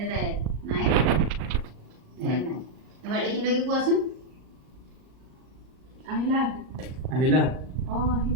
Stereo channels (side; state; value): left; late; 38 ms